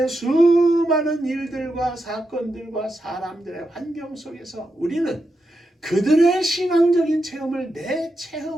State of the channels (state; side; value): normal; both; correlation 0.86